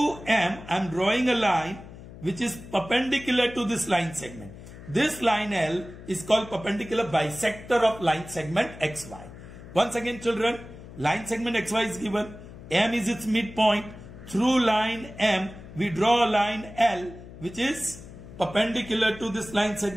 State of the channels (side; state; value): left; noise; hum, 16 dB below the sound